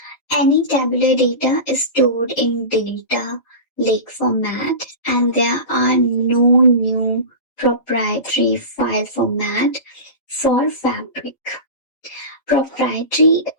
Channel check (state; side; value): late; right; 3.8 ms